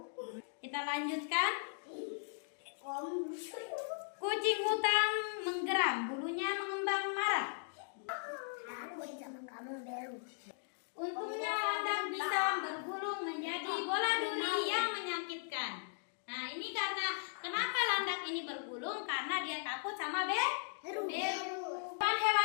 Kita lanjutkan. Kucing hutan menggeram. Bulunya mengembang marah. Aku sama kamu Beru. Untungnya landak bisa bergulung menjadi bola duri yang menyakitkan. Nah, ini karena kenapa landak ini bergulung? Karena dia takut sama Beru.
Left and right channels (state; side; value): silent; right; digital silence